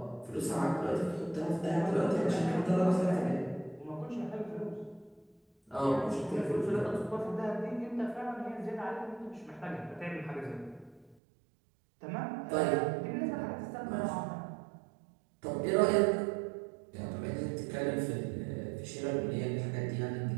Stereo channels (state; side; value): drops out; left; at 11.2 s